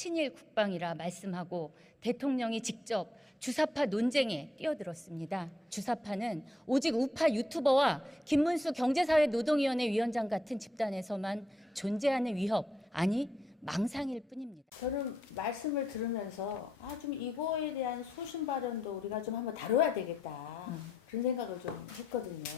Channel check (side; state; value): both; normal; correlation 0.78